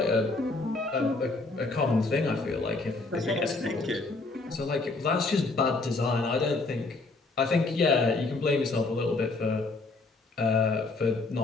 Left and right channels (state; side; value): quieter; right; 3.4 dB